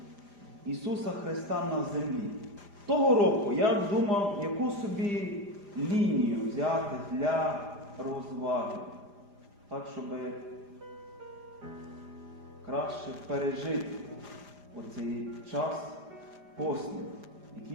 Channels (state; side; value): late; left; 4.9 ms